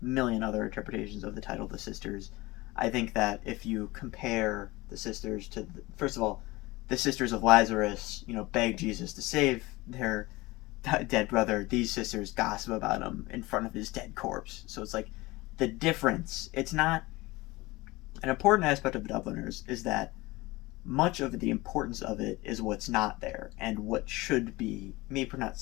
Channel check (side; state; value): right; quieter; 21.3 dB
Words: million other interpretations of the title The Sisters. I think that if you compare the sisters to, first of all, the sisters of Lazarus, beg Jesus to save their dead brother. These sisters gossip about him in front of his dead corpse. So it's like the difference. It's not, an important aspect of Dubliners is that much of the importance of it is what's not there, and what should be, maybe not